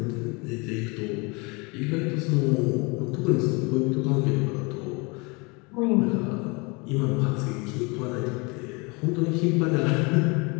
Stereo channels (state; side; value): quieter; right; 28.7 dB